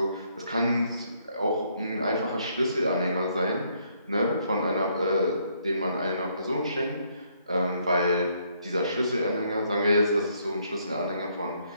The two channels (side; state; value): both; inverted; correlation -0.70